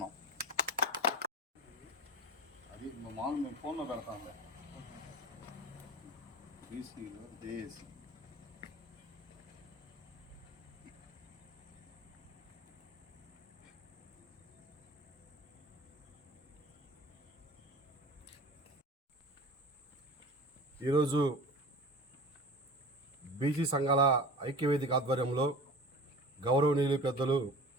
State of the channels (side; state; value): both; normal; correlation 0.37